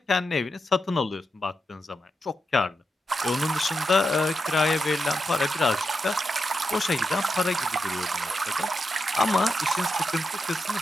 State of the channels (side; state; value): both; normal; correlation 0.86